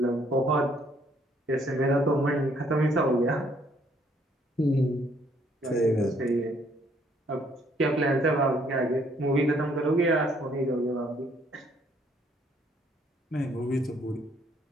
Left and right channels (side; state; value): both; normal; correlation 0.66